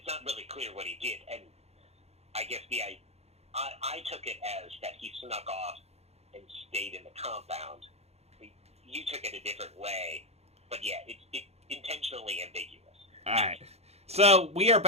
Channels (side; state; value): left; late; 0.31 ms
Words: not really clear what he did, and I guess I took it as that he snuck off and stayed in the compound. You took it a different way, but yeah, it's intentionally ambiguous. All right, so we are